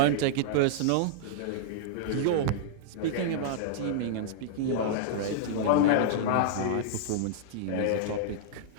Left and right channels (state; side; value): different; both; correlation -0.01